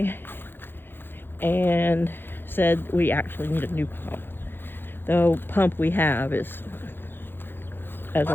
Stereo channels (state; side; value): late; right; 0.10 ms